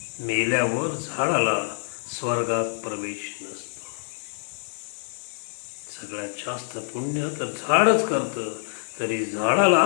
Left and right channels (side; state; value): right; silent; 61 dB below the other